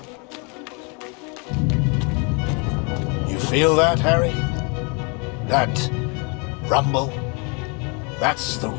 You feel that, Harry? That rumble? That's the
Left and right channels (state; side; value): quieter; right; 33.0 dB